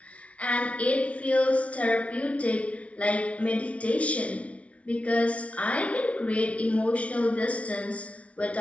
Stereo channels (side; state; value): right; late; 0.064 ms